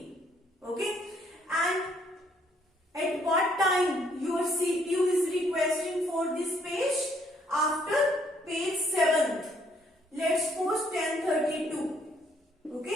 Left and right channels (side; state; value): both; normal; correlation 0.67